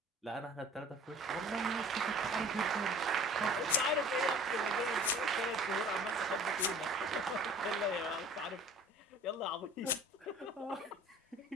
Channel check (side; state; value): both; normal; correlation 0.46